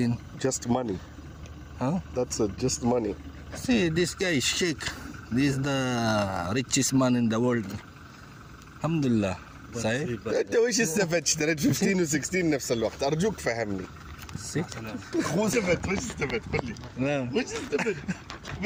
Just money. Huh? That's it. Just money. See, this guy is Sheikh. This is the richest man in the world. Alhamdulillah. صحيح؟ انت وش استفدت؟ اشتريت 15 و16 نفس الوقت، ارجوك فهمني. مو استفدت، وش استفدت؟ قل لي. نعم. وش استفدت؟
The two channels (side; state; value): both; identical; correlation 1.00